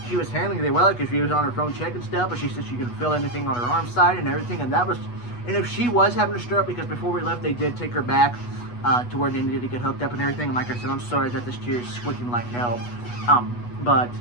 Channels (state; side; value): late; right; 8.2 ms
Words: she was handling it well because she was on her phone checking stuff, but she said she couldn't feel anything on her arm side and everything. And if she was having a stroke, because before we left, they did take her back to where they needed to get hooked up and everything. And like I said, I'm sorry that this chair is squeaking like hell. But